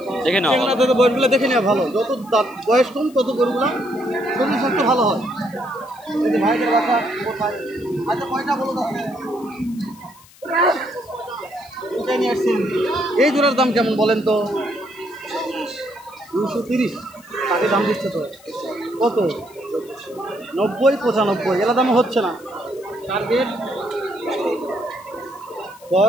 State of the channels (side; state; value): left; noise; hiss, 25 dB below the sound